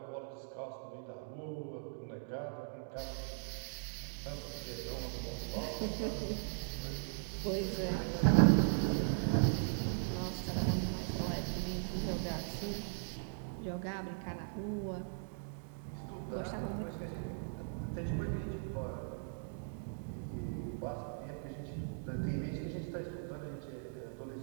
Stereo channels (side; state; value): left; silent; digital silence